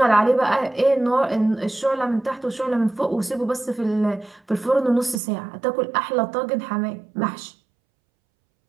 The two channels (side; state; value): left; drops out; at 5.2 s